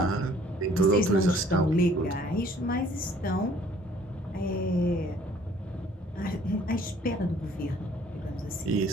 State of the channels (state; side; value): normal; both; correlation 0.57